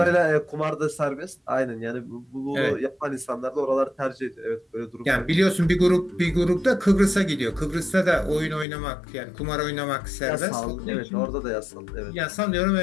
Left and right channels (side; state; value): right; drops out; at 8.7 s